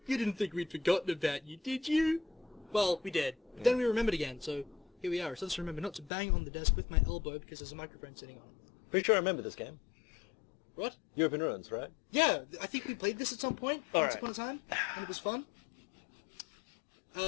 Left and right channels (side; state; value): right; drops out; at 6.1 s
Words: You didn't think we'd forgotten about you, did you? Well, we did. Yeah. Then we remembered again, so here we are. So let's remember not to bang on the desk with my elbow because there's a microphone sitting on it. Pretty sure I remember this game. What? European Ruins, right? Yeah, I think we played this at some point, once upon a time, and it was fun.